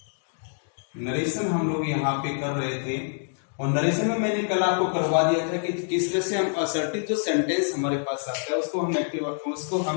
Narration हम लोग यहाँ पे कर रहे थे और नरेशन में मैंने कल आपको करवा दिया था कि किस तरह से हम असर्टिव जो सेंटेंस हमारे पास आता है उसको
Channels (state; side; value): silent; right; digital silence